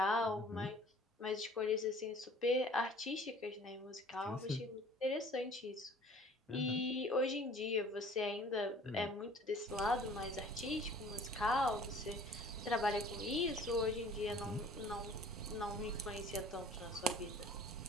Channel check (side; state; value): both; normal; correlation 0.50